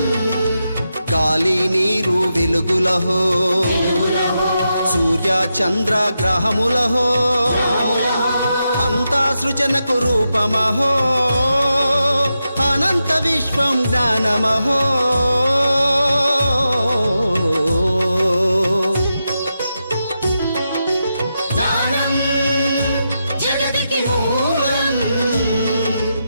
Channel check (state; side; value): inverted; both; correlation -0.87